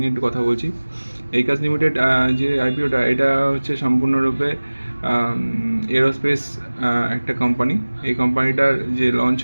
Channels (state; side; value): inverted; both; correlation -1.00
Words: একটু কথা বলছি। একাস লিমিটেড যে আইপিওটা এটা হচ্ছে সম্পূর্ণরূপে এরোস্পেস একটা কোম্পানি। এই কোম্পানিটার যে লঞ্চ